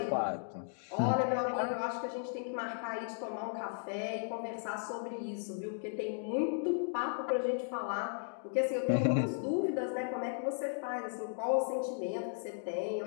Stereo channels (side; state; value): right; silent; digital silence